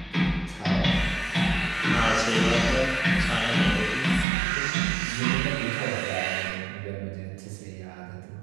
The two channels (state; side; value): drops out; left; at 4.2 s